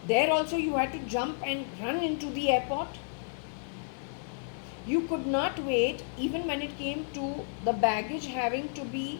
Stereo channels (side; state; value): right; silent; 57 dB below the other